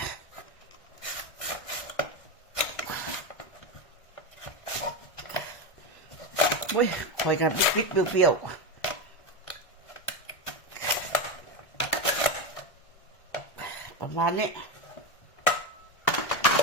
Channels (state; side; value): late; right; 1.6 ms